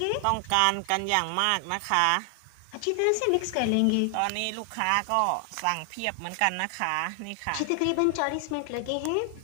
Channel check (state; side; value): different; both; correlation 0.00